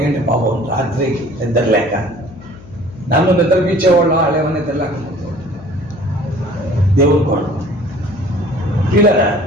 పాపం రాత్రికి నిద్ర లేక నన్ను నిద్రపించేవాళ్ళు వాళ్ళేమో నిద్ర లేకపోతే దేవుడు కూడా పిల్లరా.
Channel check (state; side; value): noise; left; hum, 19 dB below the sound